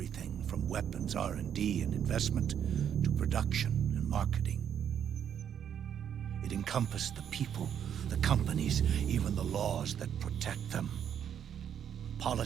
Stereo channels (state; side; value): quieter; left; 8.9 dB